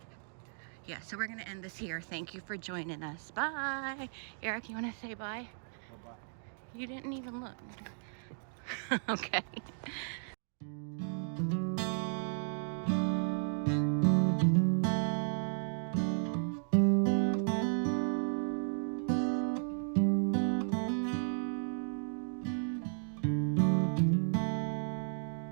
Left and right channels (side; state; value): left; silent; digital silence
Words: yeah, so we're gonna end this here. Thank you for joining us. Bye. Eric, you wanna say bye? Bye-bye. You didn't even look. Okay.